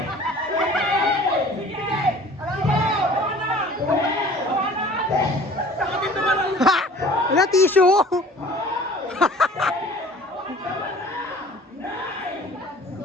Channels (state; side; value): normal; both; correlation 0.47